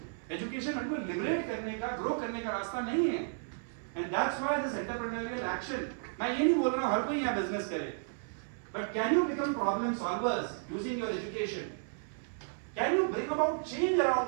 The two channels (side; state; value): left; silent; 56 dB below the other